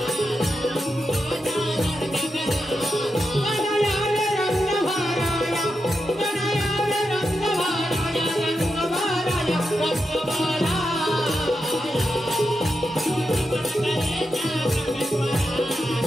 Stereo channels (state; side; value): normal; both; correlation 0.87